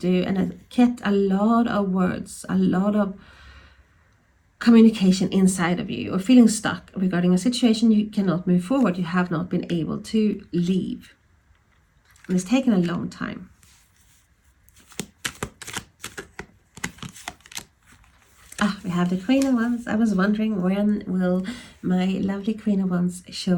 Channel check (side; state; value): both; identical; correlation 1.00